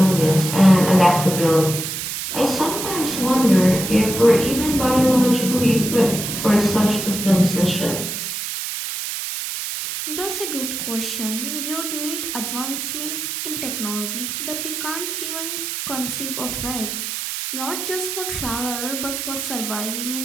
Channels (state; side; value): noise; right; hiss, 4 dB below the sound